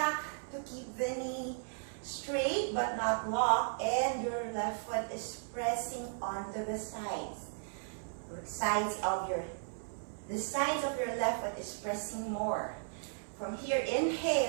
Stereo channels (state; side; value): silent; left; 54 dB below the other